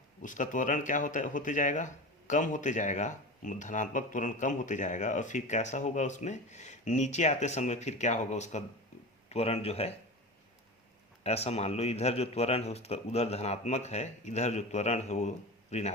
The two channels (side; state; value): both; normal; correlation 0.29